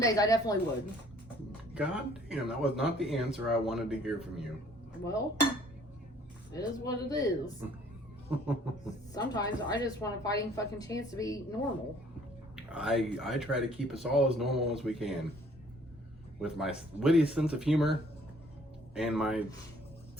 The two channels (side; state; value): both; normal; correlation 0.58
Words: I definitely would. God damn, that was not the answer I wanted to hear from you. Well, it is what it is. Sometimes I just want a fighting fucking chance to be normal. I try to keep us all as normal as we can. With my witty sense of humor and my